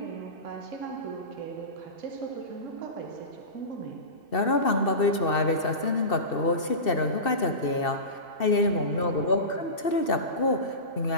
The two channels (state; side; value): late; right; 2.7 ms